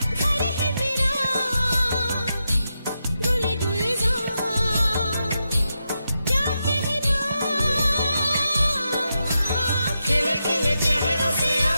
घर है मेरा गुले गुलजार क्या कहना खिले खिले चेहरों से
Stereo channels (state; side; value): inverted; both; correlation -0.86